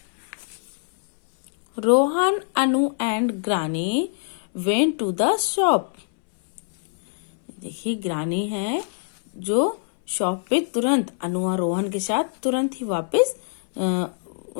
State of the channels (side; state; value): right; silent; 63 dB below the other